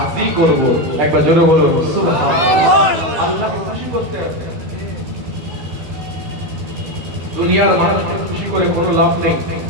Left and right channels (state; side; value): late; left; 12 ms